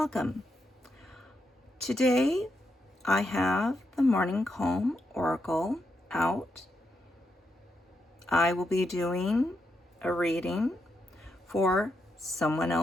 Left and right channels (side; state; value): both; normal; correlation 0.83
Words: Today, I have the Morning Calm Oracle out. I will be doing a reading for someone